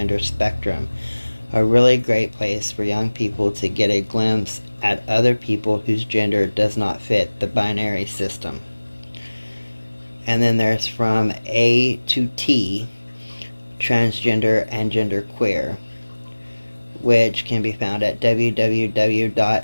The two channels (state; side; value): inverted; both; correlation -1.00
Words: spectrum. A really great place for young people to get a glimpse at other people whose gender does not fit the binary system. And then there's From A to T, Transgender and Genderqueer, which can be found at